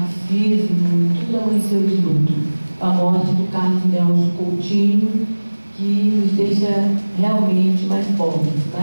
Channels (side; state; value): both; inverted; correlation -1.00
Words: tudo amanheceu de luto. A morte do Carlos Nelson Coutinho, que nos deixa realmente mais pobres,